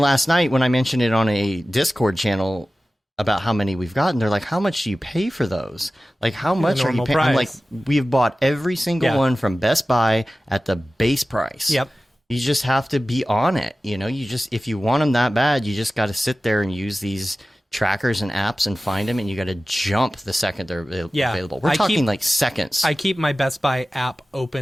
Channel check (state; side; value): normal; both; correlation 0.96